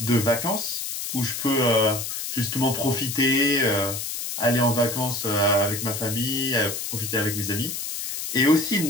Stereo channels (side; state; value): left; noise; hiss, 5 dB below the sound